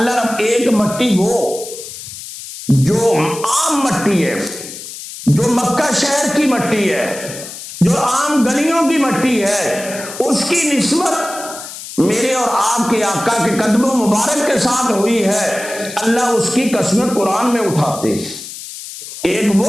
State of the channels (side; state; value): left; noise; hiss, 12 dB below the sound